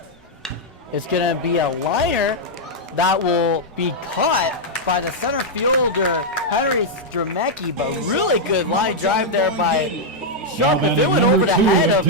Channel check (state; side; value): normal; both; correlation -0.04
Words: It's going to be a liner that will be caught by the center fielder, Henry Stremecki, but really good line drive there by Sharp. If it went over the head of